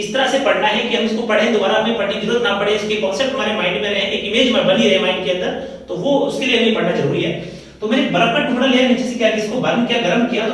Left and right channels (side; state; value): both; identical; correlation 1.00